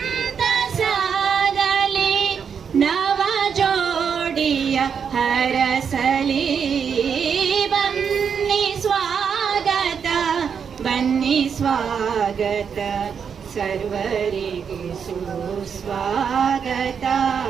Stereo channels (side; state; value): left; quieter; 6.9 dB